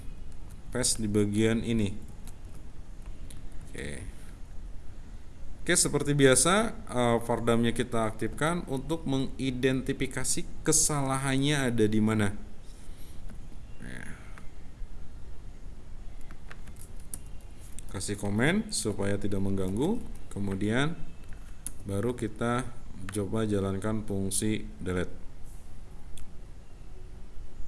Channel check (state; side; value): identical; both; correlation 1.00